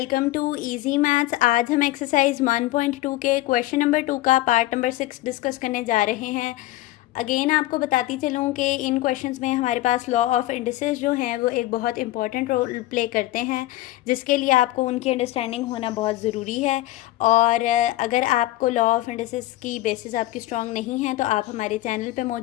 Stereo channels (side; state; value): right; quieter; 16.6 dB